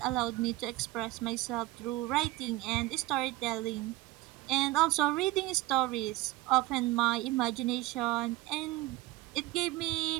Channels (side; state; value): left; quieter; 18.1 dB